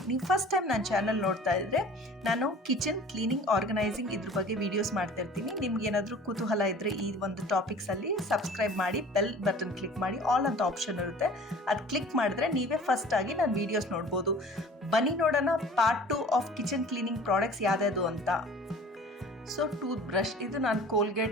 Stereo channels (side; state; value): both; normal; correlation 0.46